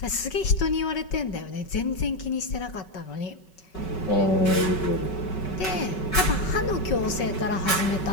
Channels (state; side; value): late; right; 5.3 ms